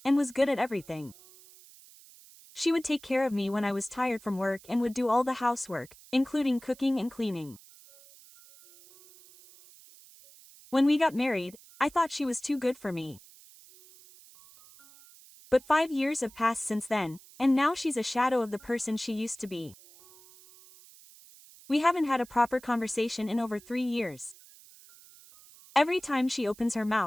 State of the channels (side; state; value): right; noise; hiss, 23 dB below the sound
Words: and was good at everything. She would take care of me when I was tired from work and would do all the housework, including cooking and cleaning. When we got married, I thought she was too good for me. But 5 years have passed since then, and now she's a shadow of the person she used to be. We haven't had a proper conversation in over 3 years. Every time she opens her